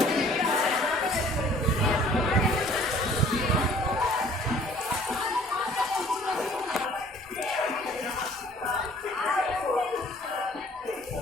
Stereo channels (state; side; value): normal; both; correlation 0.54